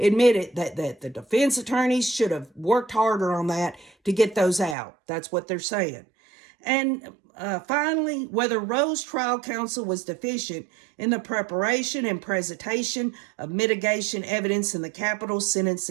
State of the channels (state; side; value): drops out; left; at 4.8 s